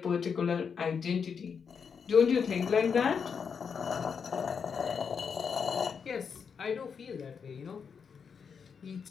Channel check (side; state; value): right; quieter; 6.4 dB